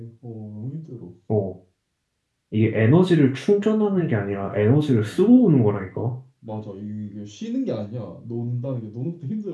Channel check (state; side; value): identical; both; correlation 1.00